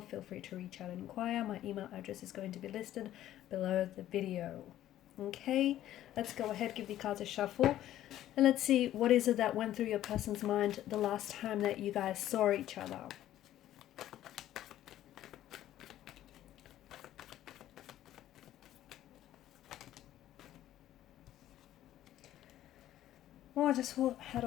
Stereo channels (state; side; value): quieter; right; 12.9 dB